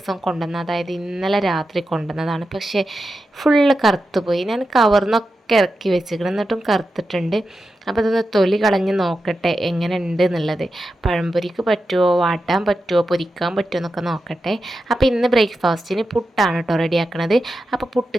കൊണ്ടുവന്ന, അതായത് ഇന്നലെ രാത്രി കൊണ്ടുവന്നതാണ്. പക്ഷേ ഫുള്ള് കറുത്ത് പോയി. ഞാൻ കവർന്നൊക്കെ ഇറക്കി വെച്ചിരിക്കണം, എന്നിട്ടും കറുത്തിട്ടുണ്ട്. അപ്പോൾ ഇതൊന്ന് തൊലി കളഞ്ഞ് നോക്കട്ടെ എങ്ങനെ ഉണ്ട് എന്നുള്ളത്. പഴംപൊരിക്ക് പറ്റുമോ, വാട്ടാൻ പറ്റുമോ, പൊരിക്കാൻ പറ്റുമോ എന്നൊക്കെ നോക്കട്ടെ. അപ്പോൾ ഇന്ന് ബ്രേക്ക്ഫാസ്റ്റിന് പുട്ടാണ് കേട്ടോ റെഡിയാക്കണത്. അപ്പോൾ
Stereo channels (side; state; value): both; normal; correlation 0.90